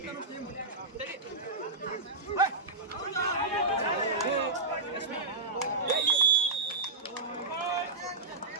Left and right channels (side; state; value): left; quieter; 3.4 dB